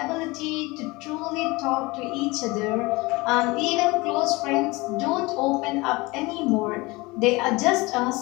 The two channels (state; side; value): quieter; right; 23.1 dB